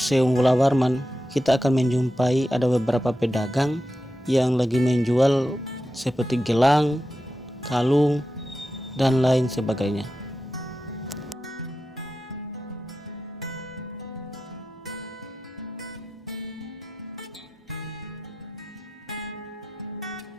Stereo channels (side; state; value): both; normal; correlation 0.91